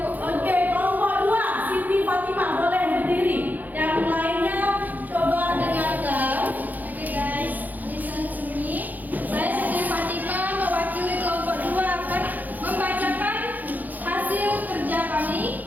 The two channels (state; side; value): late; left; 0.083 ms